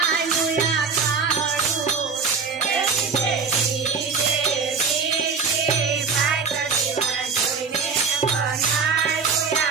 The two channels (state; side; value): quieter; left; 5.3 dB